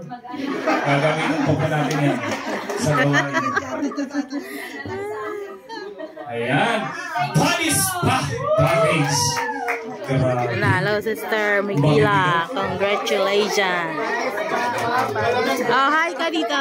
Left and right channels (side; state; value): both; identical; correlation 1.00